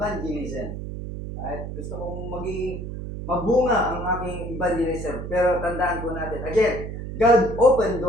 Right? Gusto kong maging mabunga ang aking evangelism. Pero tandaan po natin, again, God opened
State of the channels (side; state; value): right; noise; hum, 7 dB below the sound